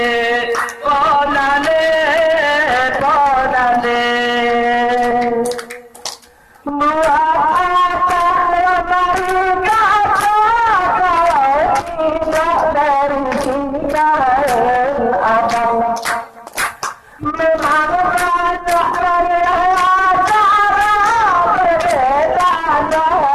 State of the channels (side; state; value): both; identical; correlation 1.00